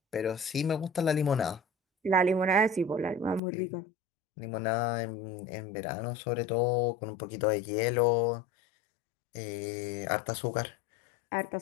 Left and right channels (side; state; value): right; drops out; at 3.4 s